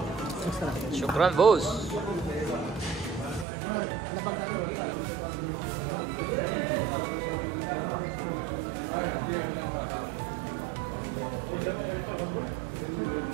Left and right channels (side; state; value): left; drops out; at 3.5 s